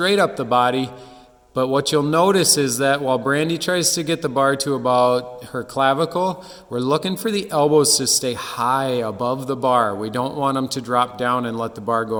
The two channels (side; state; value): both; identical; correlation 1.00